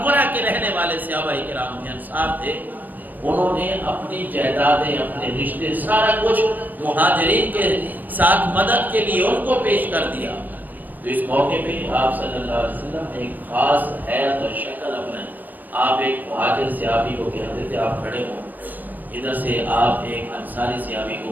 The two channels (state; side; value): late; left; 0.084 ms